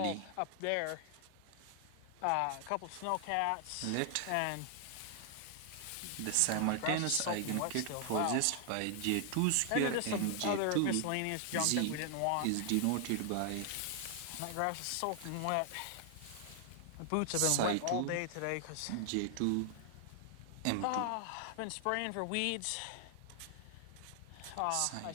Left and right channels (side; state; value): both; different; correlation 0.00